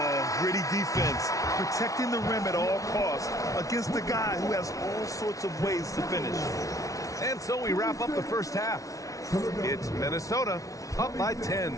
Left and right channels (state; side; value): late; right; 0.17 ms